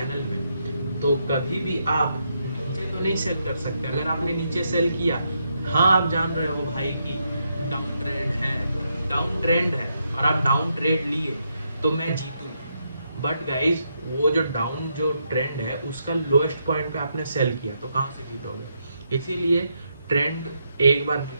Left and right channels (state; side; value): inverted; both; correlation -0.79